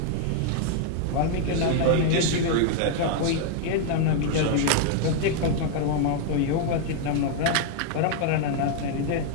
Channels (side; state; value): both; different; correlation 0.00